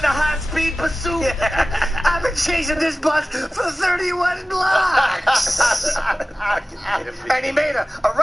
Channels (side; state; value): both; normal; correlation 0.96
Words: a high-speed pursuit. I've been chasing this bus for 31 blocks. And he made a